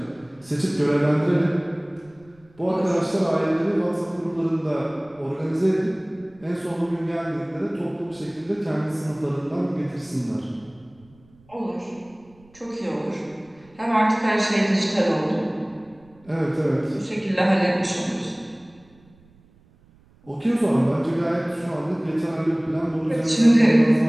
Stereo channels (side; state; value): right; noise; rumble, 29 dB below the sound